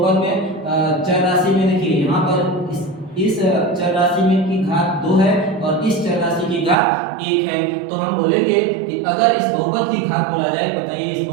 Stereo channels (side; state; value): left; drops out; at 6.8 s